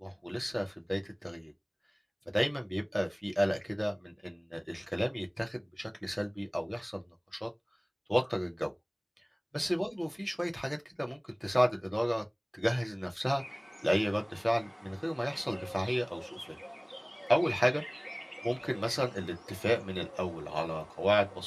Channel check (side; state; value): both; identical; correlation 1.00